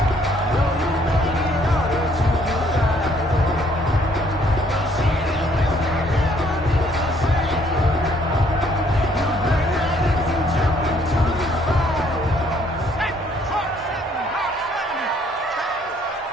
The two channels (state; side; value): normal; both; correlation 0.64